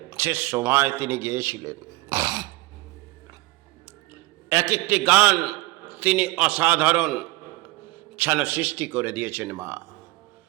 সে সময় তিনি গেয়েছিলেন। এক একটি গান তিনি অসাধারণ যেন সৃষ্টি করে দিয়েছেন মা।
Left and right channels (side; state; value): left; quieter; 20.9 dB